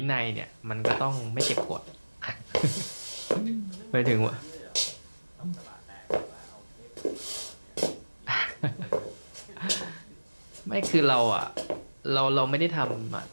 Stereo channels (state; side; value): inverted; both; correlation -1.00